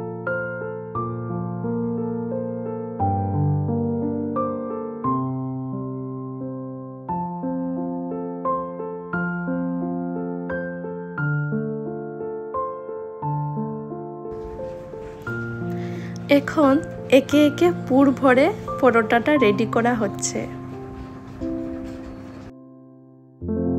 এখন একে একে পুর ভরে পরোটাটা রেডি করা হচ্ছে।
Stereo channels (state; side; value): identical; both; correlation 1.00